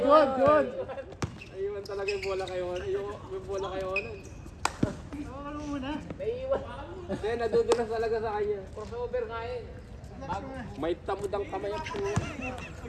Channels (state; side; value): identical; both; correlation 1.00